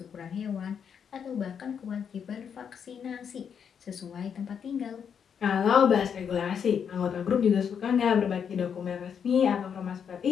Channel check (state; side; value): quieter; right; 7.4 dB